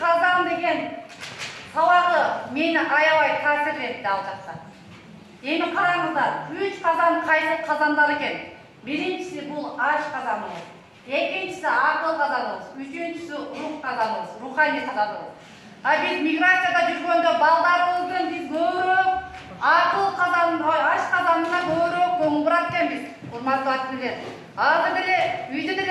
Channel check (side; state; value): both; identical; correlation 1.00